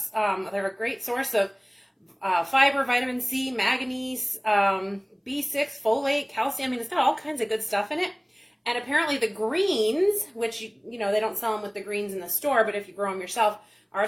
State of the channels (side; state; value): both; identical; correlation 1.00